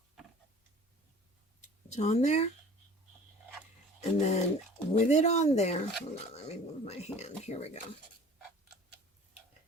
It's on there. And then with it on there, hold on, let me move my hand. Here we go.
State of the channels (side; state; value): both; normal; correlation 0.46